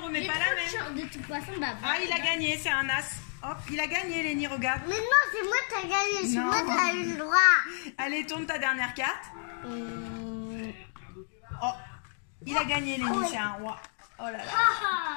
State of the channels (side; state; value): right; silent; 58 dB below the other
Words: remets pas la même. De toute façon, bah. Ah, il a gagné, c'est un as. Hop, il a gagné, Lénie, regarde. Mais non, c'est moi qui as gagné. C'est moi qui as eu le droit. Allez, tourne ta dernière carte. Oh, il a gagné, Lénie, c'est un roi. Oh là là.